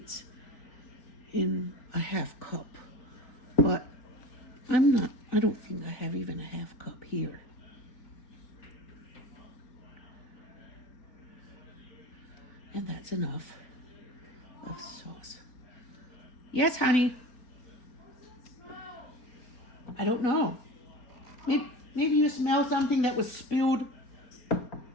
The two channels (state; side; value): late; right; 4.4 ms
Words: in a half cup. But I don't think I have even a half cup here. And that's enough of sauce. Yes, honey. I don't know. Maybe you smell something that was spilled